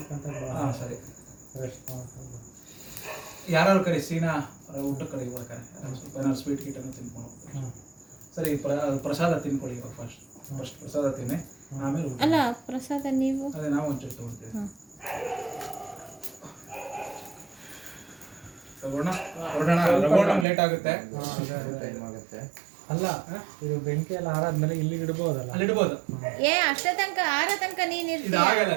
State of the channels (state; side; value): drops out; left; at 20.5 s